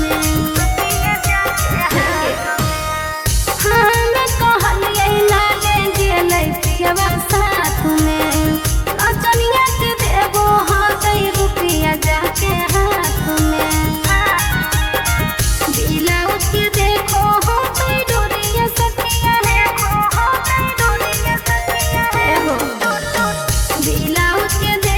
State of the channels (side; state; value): both; identical; correlation 1.00